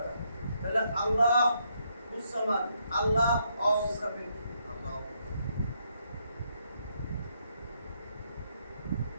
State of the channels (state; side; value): inverted; both; correlation -0.76